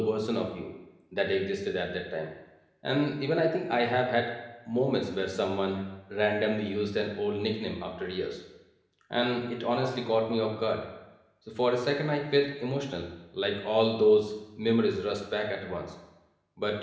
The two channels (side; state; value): both; identical; correlation 1.00